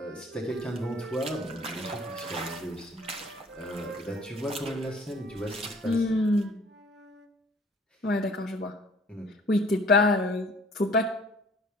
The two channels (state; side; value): normal; both; correlation 0.53